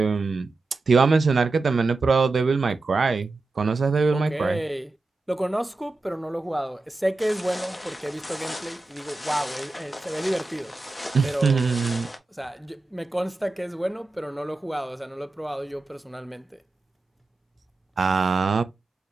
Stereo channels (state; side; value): quieter; left; 3.4 dB